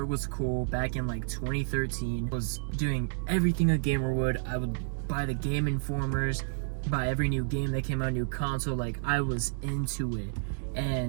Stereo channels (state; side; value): silent; left; digital silence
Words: was cool back in like 2013. I was doing everything a gamer would. I would buy the Game Informers, buy every new game that came out, new console. Like, I was into it.